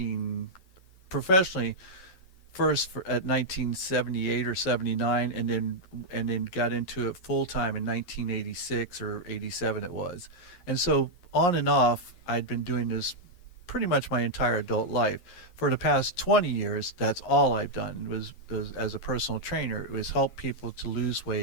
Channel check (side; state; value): right; late; 11 ms